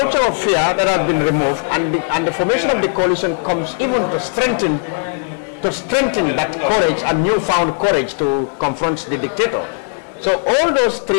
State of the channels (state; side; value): silent; right; 59 dB below the other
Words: of fear that has been removed, and the formation of the coalition comes even to strengthen that courage and newfound courage to confront the dictator. So all those